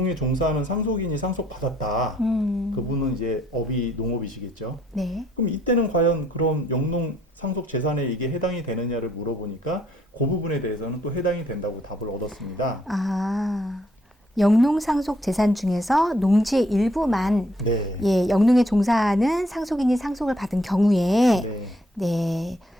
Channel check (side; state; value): both; normal; correlation 0.68